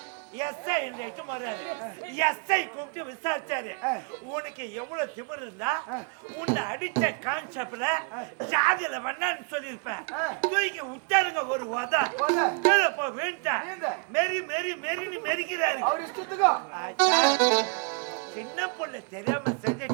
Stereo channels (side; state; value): left; quieter; 37.7 dB